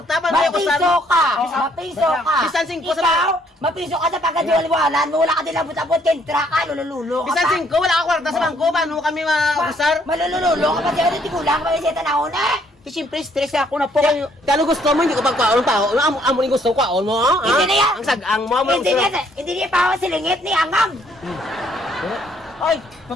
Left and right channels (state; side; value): normal; both; correlation 0.67